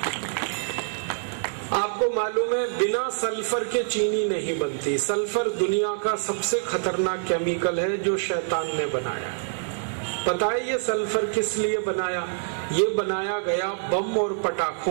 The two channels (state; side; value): silent; left; digital silence